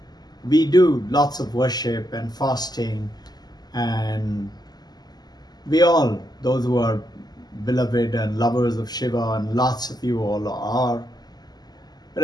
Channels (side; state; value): right; late; 0.20 ms